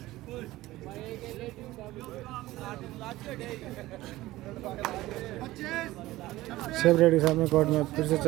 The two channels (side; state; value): left; quieter; 17.3 dB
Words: सेव रेडी साहब में कोर्ट में फिर से